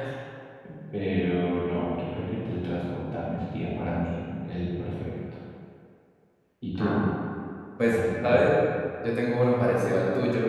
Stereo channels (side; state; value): both; identical; correlation 1.00